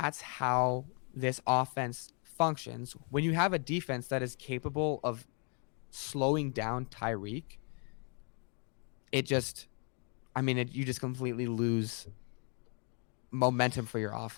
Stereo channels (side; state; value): right; quieter; 39.6 dB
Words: how this offense functions, when you have a defense that is capable of slowing down Tyreek, you just completely lose momentum for your